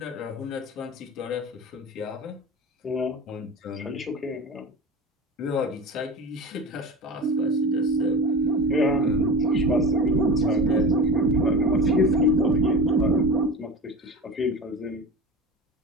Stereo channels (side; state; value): both; normal; correlation 0.32